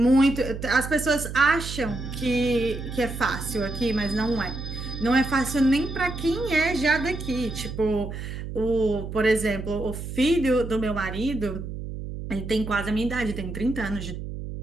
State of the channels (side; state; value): right; noise; hum, 8 dB below the sound